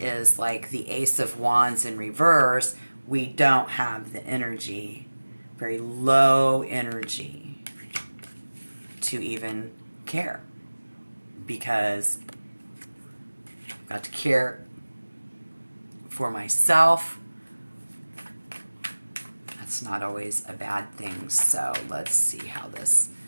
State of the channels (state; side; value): inverted; both; correlation -1.00